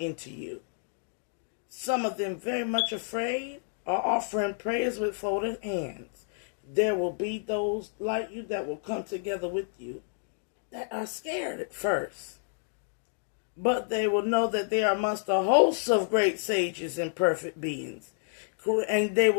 you. Some of them very much afraid are offering prayers with folded hands. There will be those like you that will come together with you that are scared at first. But they will know that they are amongst the hosts of great sages and perfect beings. And they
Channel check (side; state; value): right; silent; 58 dB below the other